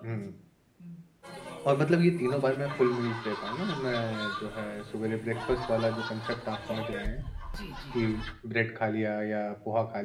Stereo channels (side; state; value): both; identical; correlation 1.00